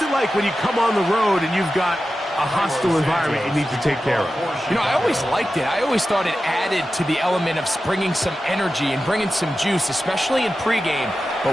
it like when you come on the road and you've got a hostile environment you need to take care of? You know, I always liked it. I always thought it added to the element of bringing some energy and bringing some juice, especially in pregame.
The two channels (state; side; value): normal; both; correlation 0.93